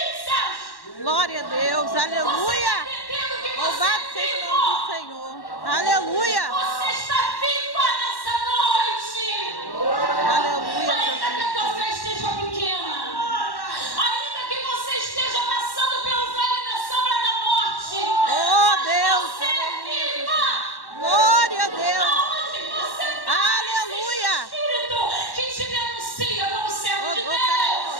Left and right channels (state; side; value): late; right; 1.1 ms